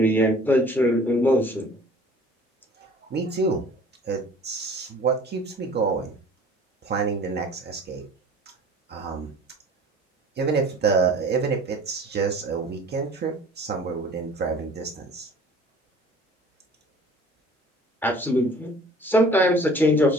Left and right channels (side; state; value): both; normal; correlation 0.48